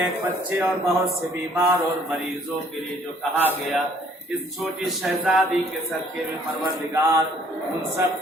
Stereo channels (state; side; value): normal; both; correlation 0.60